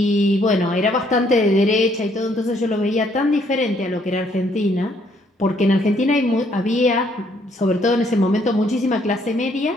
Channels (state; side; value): normal; both; correlation 0.68